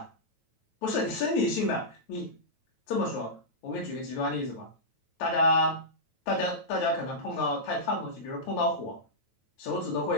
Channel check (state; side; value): late; right; 9.1 ms